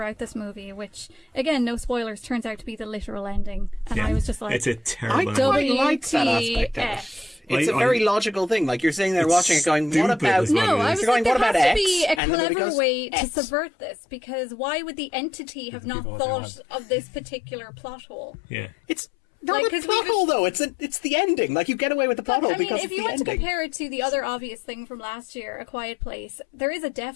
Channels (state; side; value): drops out; right; at 12.2 s